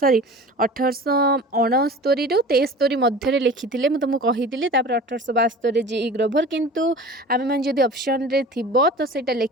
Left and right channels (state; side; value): normal; both; correlation 0.39